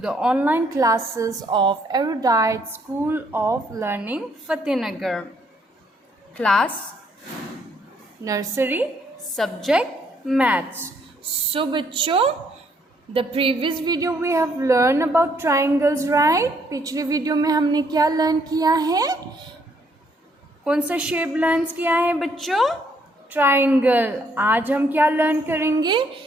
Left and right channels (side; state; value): both; normal; correlation 0.69